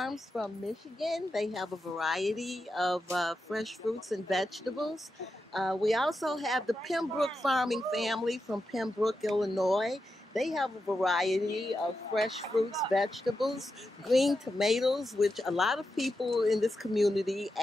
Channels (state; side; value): normal; both; correlation 0.88